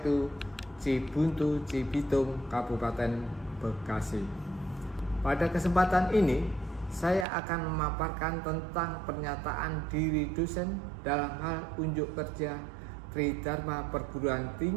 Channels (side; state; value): left; drops out; at 7.2 s